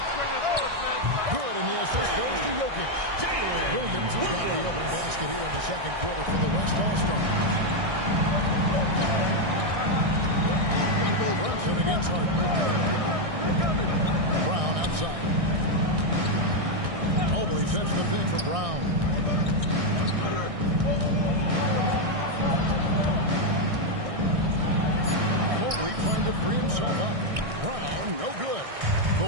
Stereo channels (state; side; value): late; left; 1.6 ms